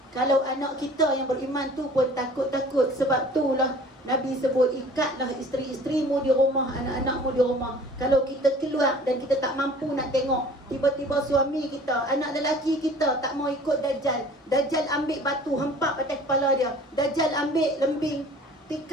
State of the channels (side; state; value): both; normal; correlation 0.48